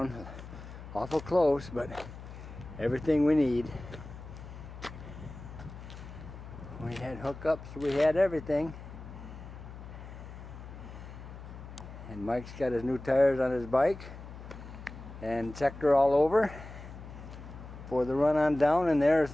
Awful close, but everything we need. We had hookups, we had everything. And Mike's got his new tires on his bike and checked her all over for the run on down, and there's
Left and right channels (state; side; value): noise; left; hum, 13 dB below the sound